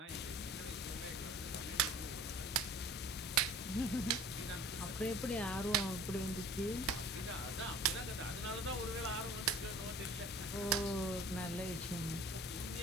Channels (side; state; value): both; normal; correlation 0.45